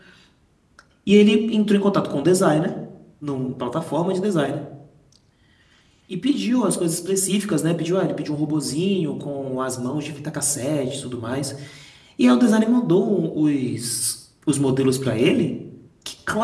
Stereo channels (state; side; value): identical; both; correlation 1.00